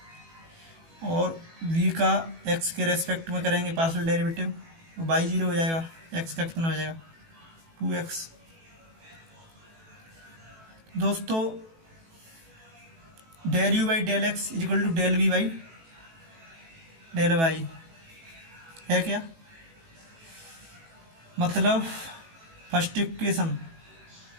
और v का x के रेस्पेक्ट में करेंगे पार्शियल डेरिवेटिव तो y 0 हो जाएगा, x का कितना हो जाएगा 2x। दोस्तों del u by del x is equal to del v by del y है क्या, मतलब फर्स्ट इक्वेशन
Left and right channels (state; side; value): late; left; 18 ms